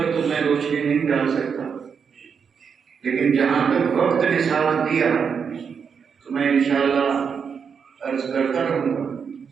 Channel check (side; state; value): left; quieter; 6.5 dB